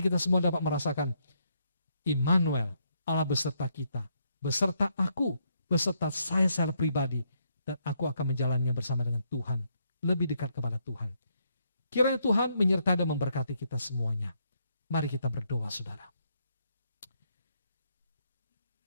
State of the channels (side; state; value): both; inverted; correlation -0.75